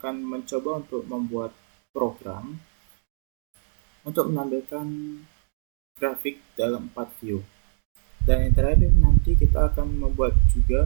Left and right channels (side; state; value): left; silent; digital silence